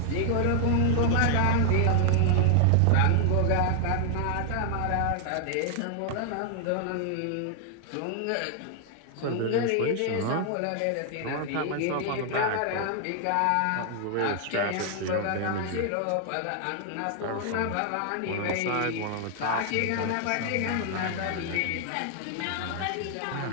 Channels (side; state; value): both; different; correlation 0.00